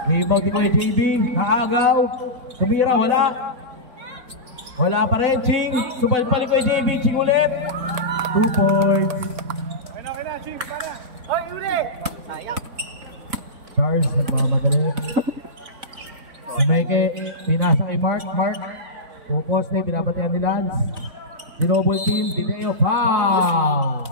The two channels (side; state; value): left; late; 4.0 ms